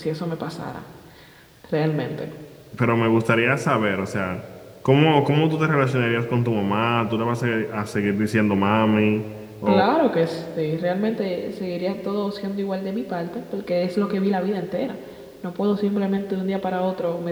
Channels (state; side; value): identical; both; correlation 1.00